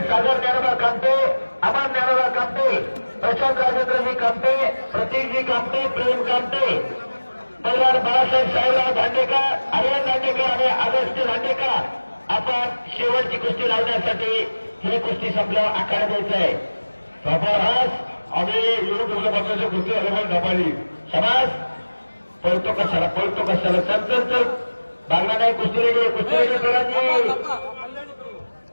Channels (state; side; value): inverted; both; correlation -1.00